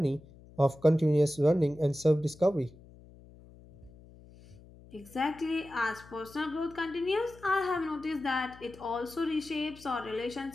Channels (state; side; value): noise; left; hum, 22 dB below the sound